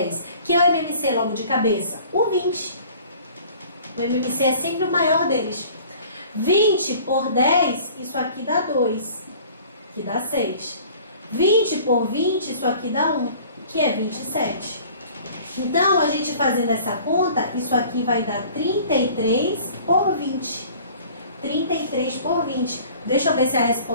Que é o MMC logo de cabeça? O 20. O MMC é sempre o maior deles. 20 por 10, isso aqui dá 2, que dá 6. 20 por 20, isso aqui dá 1, que é 27. Então, a gente fazendo essa conta, isso aqui vai dar 33 por 20. 33 por 20. Deixa eu ver se a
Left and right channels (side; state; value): both; inverted; correlation -0.48